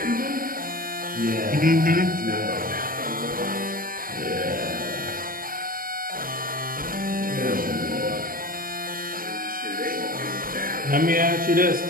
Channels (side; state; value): left; late; 0.41 ms